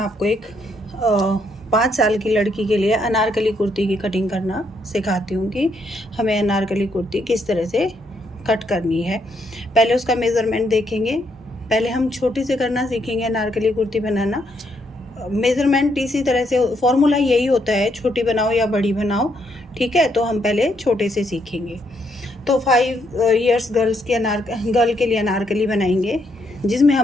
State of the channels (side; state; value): both; normal; correlation 0.74